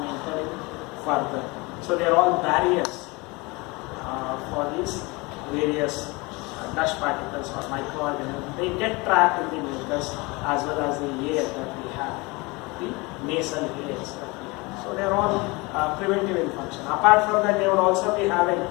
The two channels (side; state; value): right; quieter; 25.3 dB